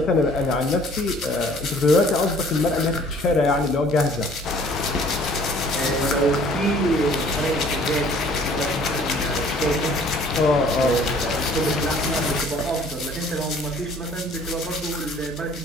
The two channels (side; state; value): both; normal; correlation 0.54